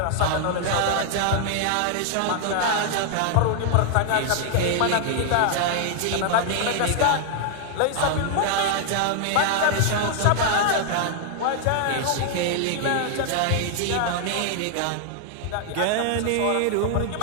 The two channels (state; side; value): different; both; correlation 0.00